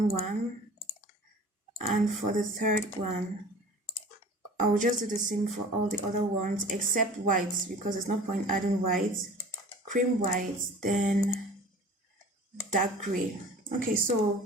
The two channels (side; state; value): both; normal; correlation 0.43